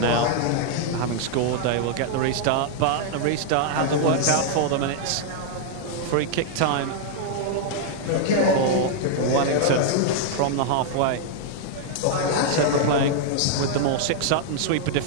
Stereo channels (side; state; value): both; different; correlation -0.01